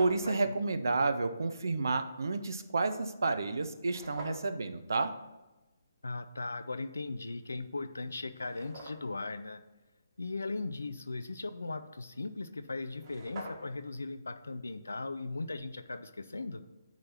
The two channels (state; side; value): inverted; both; correlation -0.86